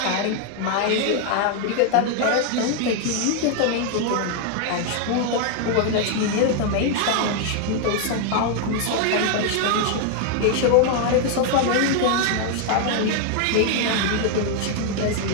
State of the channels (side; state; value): both; different; correlation 0.00